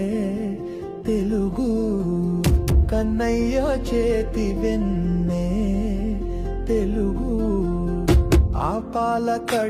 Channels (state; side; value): identical; both; correlation 1.00